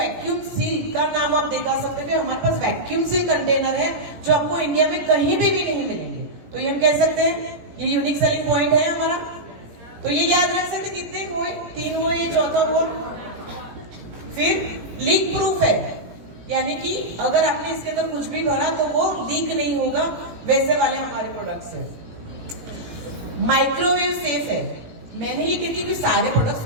सील का नाम आप दिखा सकते हो कि हमारे पास वैक्यूम सील कंटेनर है जो आपको इंडिया में कहीं पे भी नहीं मिलेंगे। तो ये हम कह सकते हैं ये यूनिक सेलिंग पॉइंट है हमारा। तो ये याद रख सकते कितने हुए, 3 हुए, ये चौथा हुआ। फिर लीक प्रूफ है, यानी कि अगर आपने इसके अंदर कुछ भी भरा तो वो लीक नहीं होगा, वैसे वाले हमारे प्रोडक्ट्स है। माइक्रोवेव सेफ है। मैंने ये कहती कि सारे प्रोडक्ट्स,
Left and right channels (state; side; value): late; left; 17 ms